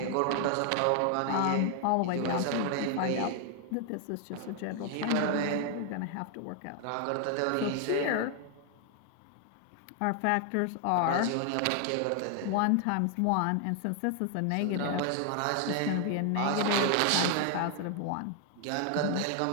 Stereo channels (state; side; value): different; both; correlation 0.00